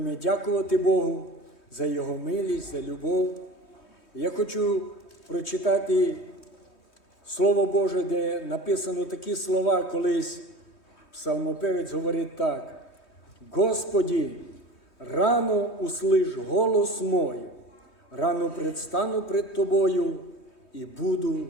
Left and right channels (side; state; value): right; late; 3.2 ms